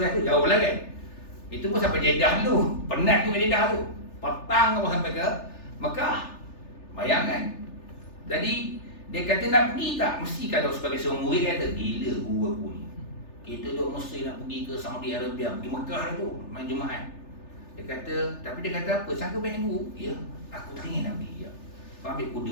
tu jauh lah kan. Itu pun sampai Jeddah dulu. Penat tu ke Jeddah tu. Petang apa sampai ke Mekah. Bayangkan. Jadi dia kata nak pergi tak? Mesti kalau sebagai seorang murid kata, gila guru aku ni. Kita duk mesti nak pergi ke Saudi Arabia, pergi Mekah tu, main Jumaat. Dia kata, tapi dia kata apa? Sangka banyak guru? Ya, aku tak ingin nak pergi. Ya. Kau ambil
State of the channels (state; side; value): late; right; 3.4 ms